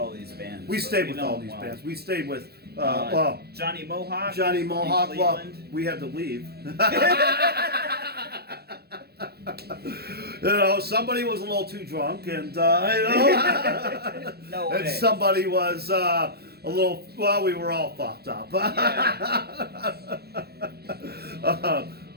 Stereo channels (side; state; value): left; late; 0.46 ms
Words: these bands. We stayed with all these bands. We stayed with Johnny Mohawk. Well, we had to leave. Somebody was a little too drunk, and No way. And somebody was a little. Well, we were all fucked up.